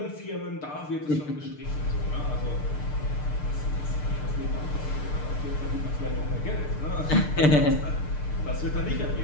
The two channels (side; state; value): right; late; 6.7 ms